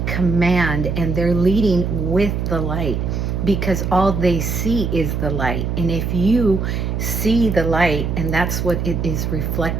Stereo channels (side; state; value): right; noise; hum, 1 dB below the sound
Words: command and they're leading with the light, because all they see is the light. And if you see the light and that's what it is